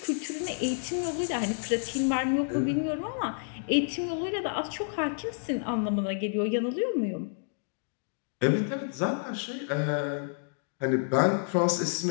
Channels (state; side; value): silent; right; digital silence